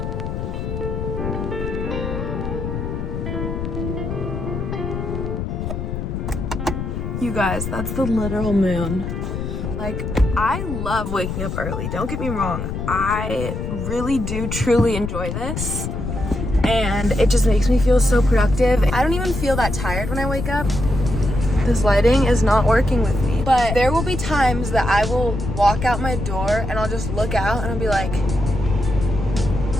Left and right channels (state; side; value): noise; left; rumble, 4 dB below the sound